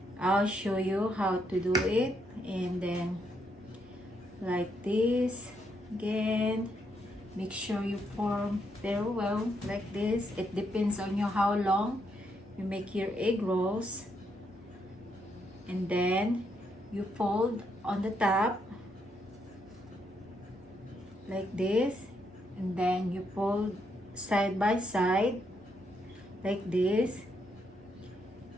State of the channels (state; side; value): normal; both; correlation 0.77